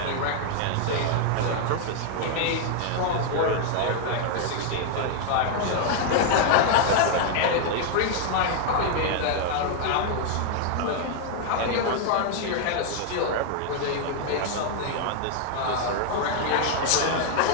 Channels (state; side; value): different; both; correlation 0.00